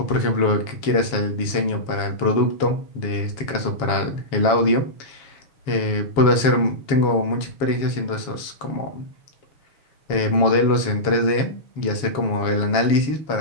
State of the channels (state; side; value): late; right; 7.2 ms